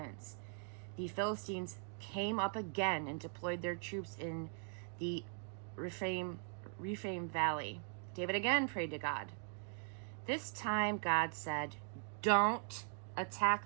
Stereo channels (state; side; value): silent; left; 51 dB below the other